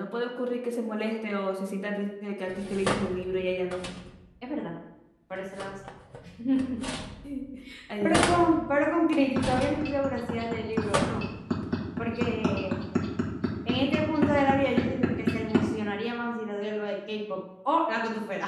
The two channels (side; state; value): both; identical; correlation 1.00